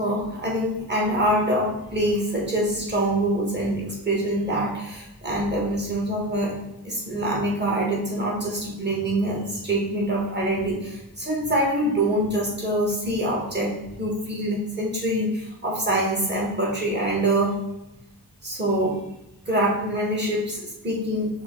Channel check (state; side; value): normal; both; correlation 0.19